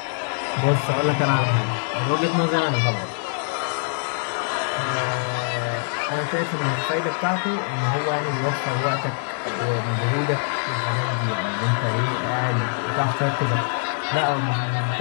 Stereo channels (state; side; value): silent; right; digital silence